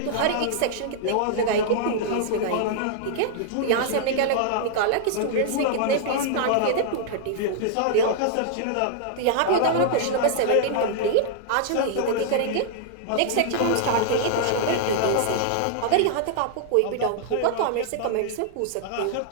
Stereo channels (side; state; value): both; different; correlation -0.01